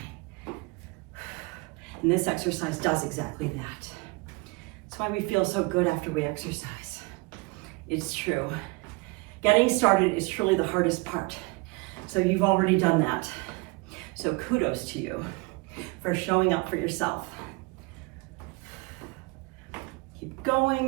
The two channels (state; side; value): quieter; left; 26.4 dB